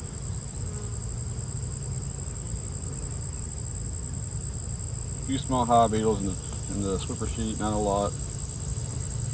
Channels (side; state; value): both; identical; correlation 1.00